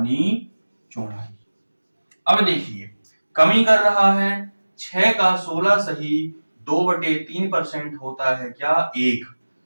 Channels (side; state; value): both; inverted; correlation -1.00